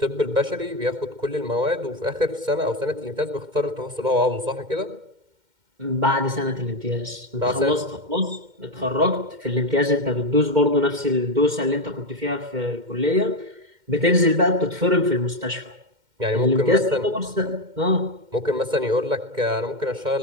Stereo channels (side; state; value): left; late; 2.1 ms